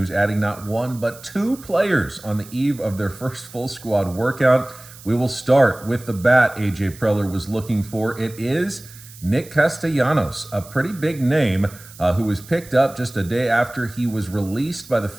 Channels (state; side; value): noise; right; hiss, 19 dB below the sound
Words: adding not one but two players on the eve of their first full squad workout. We will start with the bat A.J. Preller was looking for. It is Nick Castellanos, a pretty big name, who was picked up just a day after he was released by the